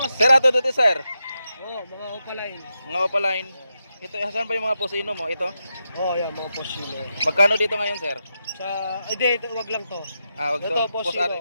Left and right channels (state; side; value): inverted; both; correlation -0.87